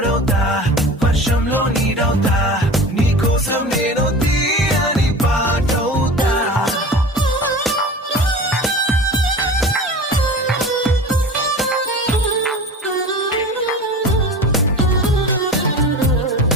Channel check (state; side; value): normal; both; correlation 0.35